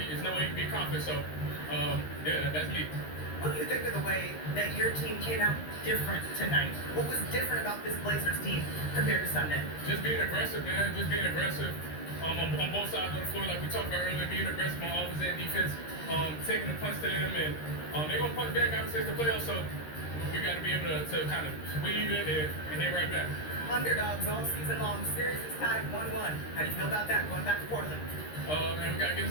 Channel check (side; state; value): right; late; 13 ms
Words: there's no way you can be confident, so yeah, that's me. What do you think of the way that your team came out different tonight? What was different about this Blazers team compared to Sunday? Just being aggressive, man. Just being aggressive on both sides of the floor, like we talked about earlier. Being aggressive on offense and defense, taking the punch to them, and they're gonna punch back. Obviously, it's the playoffs, so we got to be able to kind of weave it and hit right back. Underdogs all season long. Series is tied 1-1. How do you feel about that? Going back to Portland. And we gotta get